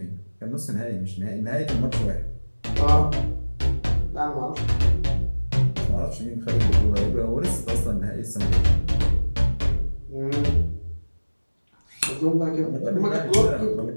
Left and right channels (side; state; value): both; inverted; correlation -1.00